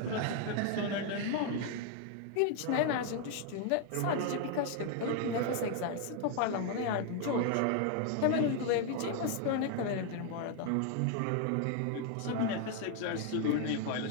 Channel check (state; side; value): different; both; correlation 0.01